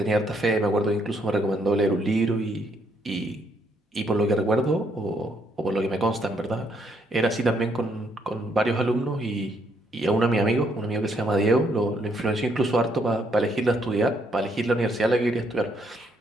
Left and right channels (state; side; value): normal; both; correlation 0.72